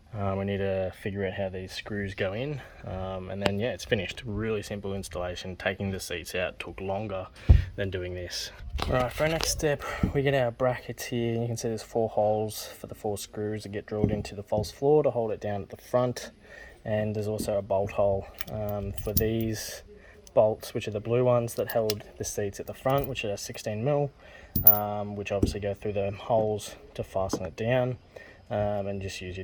We need to figure out how these screws go in, and then yeah, it's finished. Really simple installation. Taking the seats out took longer than doing this. Alright, for our next step, we get our brackets here. You can see there's 4 holes for the 4 screws that get drilled into the false floor to hold it down at the front, and there's also a bolt hole for these bolts, which are the blue ones that held the seats at the front, which are 16mm, which obviously go through the holes to fasten it down. And just use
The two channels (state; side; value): identical; both; correlation 1.00